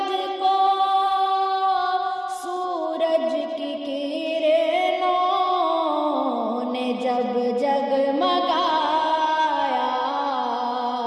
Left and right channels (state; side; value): identical; both; correlation 1.00